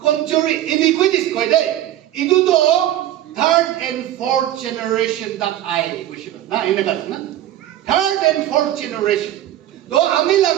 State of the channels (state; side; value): quieter; left; 12.8 dB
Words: কমজোরি ইনিকুইটিস কই দে ইদু তো third and fourth generation that I কইছিল না এনে কাছে না থার্ড এন্ড ফোর্থ জেনারেশন তো আমি